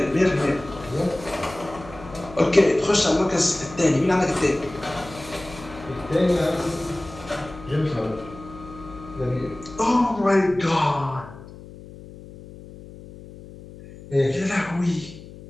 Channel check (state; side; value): noise; left; hum, 17 dB below the sound